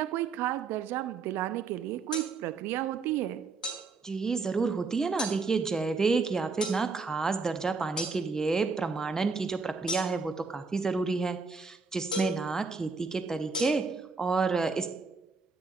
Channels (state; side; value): quieter; left; 4.5 dB